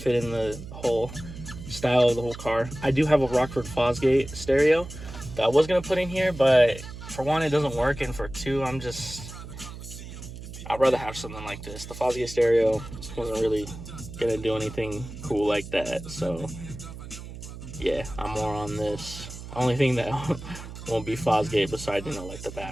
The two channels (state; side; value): noise; right; hum, 12 dB below the sound